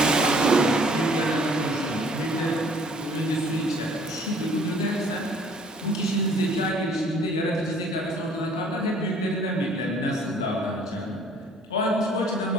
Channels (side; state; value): both; normal; correlation 0.57